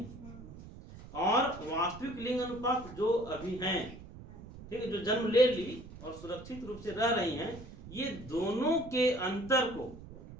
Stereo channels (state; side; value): noise; right; rumble, 15 dB below the sound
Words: और वास्तविक लिंग अनुपात जो अभी हैं, ठीक है, जो जन्म ले ली और सुरक्षित रूप से रह रही हैं, ये दोनों के अंतर को,